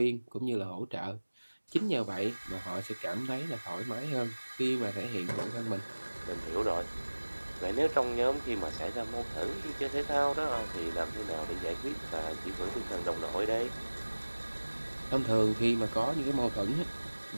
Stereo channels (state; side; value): inverted; both; correlation -1.00